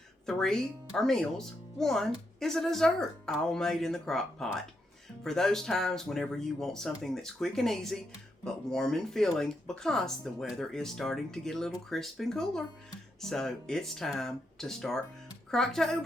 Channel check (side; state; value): both; normal; correlation 0.82